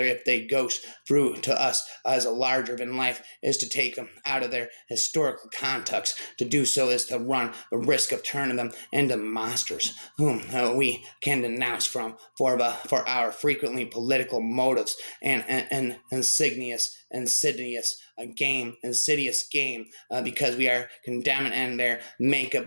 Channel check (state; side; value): inverted; both; correlation -1.00